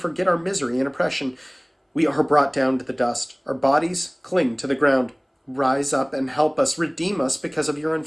our misery and oppression? We are brought down to the dust. Our bodies cling to the ground. Rise up and help us. Redeem us because of your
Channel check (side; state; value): both; identical; correlation 1.00